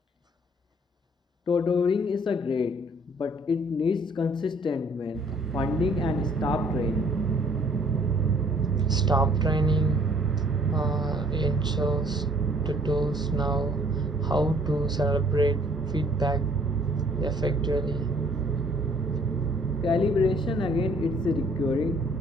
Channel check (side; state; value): both; normal; correlation 0.59